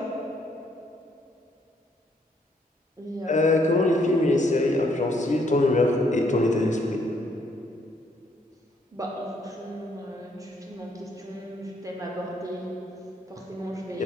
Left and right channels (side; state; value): both; normal; correlation 0.69